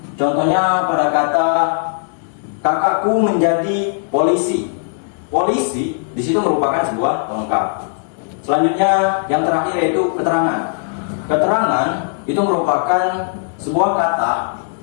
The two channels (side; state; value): right; silent; digital silence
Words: contohnya pada kata kakakku menjadi polisi. Polisi di situ merupakan sebuah pelengkap. Selanjutnya yang terakhir yaitu keterangan. Keterangan itu merupakan sebuah kata